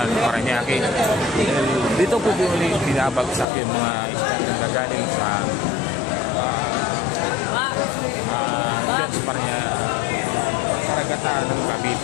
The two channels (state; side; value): drops out; right; at 3.5 s